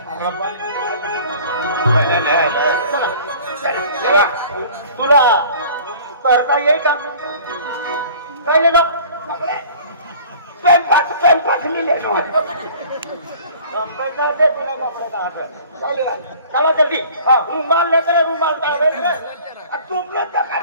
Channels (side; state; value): both; inverted; correlation -0.48